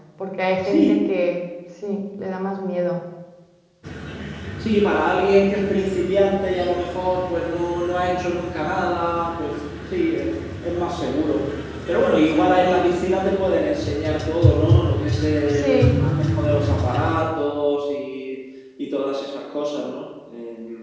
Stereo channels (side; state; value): both; identical; correlation 1.00